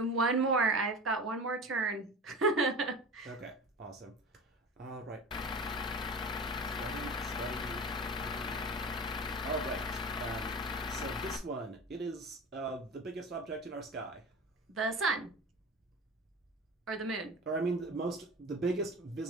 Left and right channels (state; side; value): normal; both; correlation 0.34